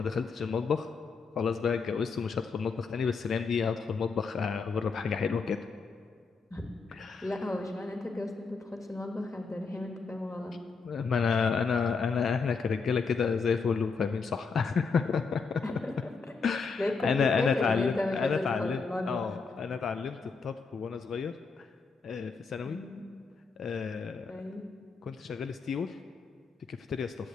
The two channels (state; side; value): quieter; right; 4.9 dB